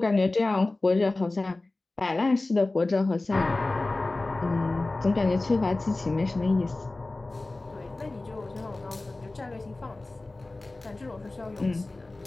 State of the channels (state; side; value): quieter; right; 3.0 dB